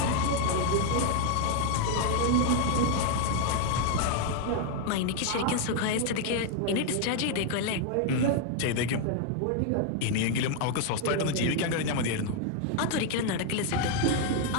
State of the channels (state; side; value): different; both; correlation 0.00